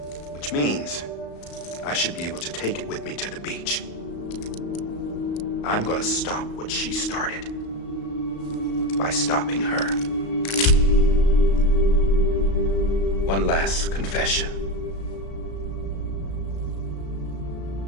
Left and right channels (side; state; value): right; late; 35 ms